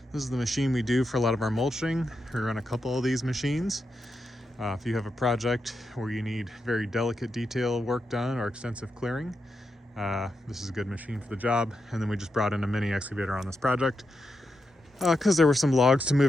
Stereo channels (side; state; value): both; normal; correlation 0.86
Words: This is the machine we do for a lot of our mulching. We run a couple of these machines. If you have a project where you need very delicate detail work done or extensive clearing, this is a good machine for the job. And then we just brought in a mini excavator on this project because there were some logs to